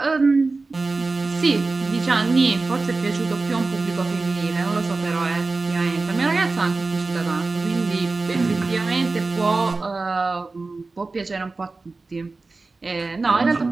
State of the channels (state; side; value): quieter; left; 3.7 dB